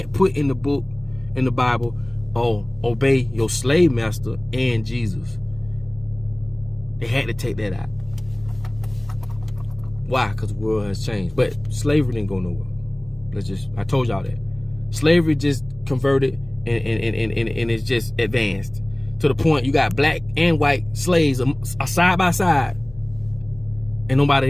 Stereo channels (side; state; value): left; noise; hum, 23 dB below the sound